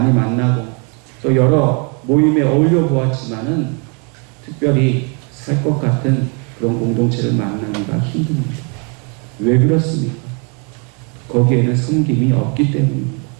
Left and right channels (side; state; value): left; quieter; 35.4 dB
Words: 만나고 또 여러 모임에 어울려 보았지만은 특별히 살 것 같은 그런 공동체를 만나기가 힘듭니다. 왜 그렇습니까? 거기에는 섬김이 없기 때문입니다.